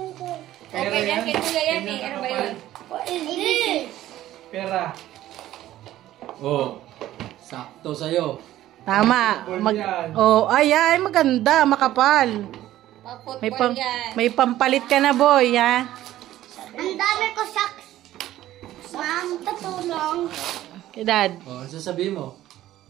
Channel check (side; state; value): left; quieter; 14.0 dB